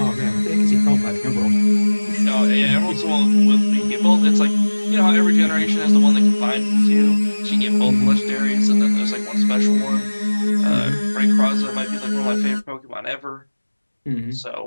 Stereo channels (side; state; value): both; inverted; correlation -1.00